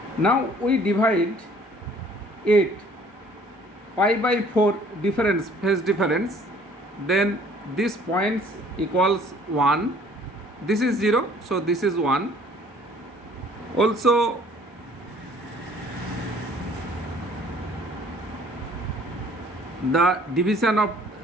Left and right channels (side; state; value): both; normal; correlation 0.56